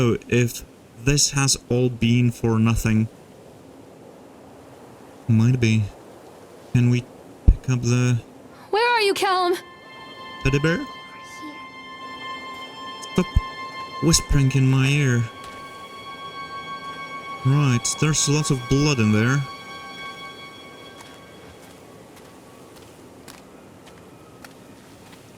if this has all been for nothing. Might be. Can we pick up the Where are you, Callum? teddy bear? Stop whispering in my ear. Right, there's lots of blood in there.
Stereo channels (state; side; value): identical; both; correlation 1.00